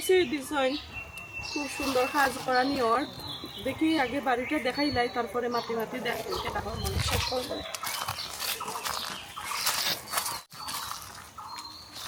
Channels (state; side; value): identical; both; correlation 1.00